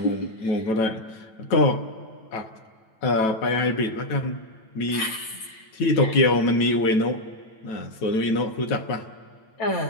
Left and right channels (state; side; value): late; right; 9.1 ms